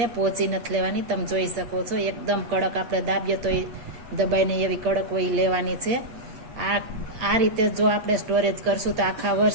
पोची नथी लेवानी। तमे जोई शको छो एकदम कड़क, आपणे दाबीए तो दबाईने एवी कड़क होय लेवानी छे। आ रीते जो આપણે સ્ટોરેજ કરશું તો આખા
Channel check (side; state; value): left; late; 8.6 ms